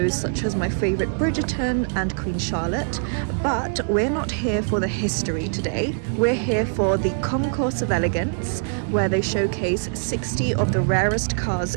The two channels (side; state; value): left; silent; digital silence